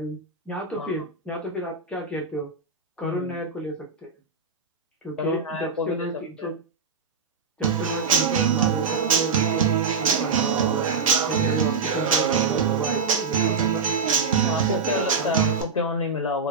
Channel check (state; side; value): quieter; left; 4.8 dB